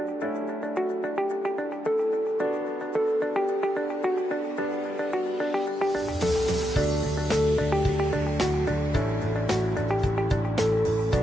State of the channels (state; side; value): normal; both; correlation 0.83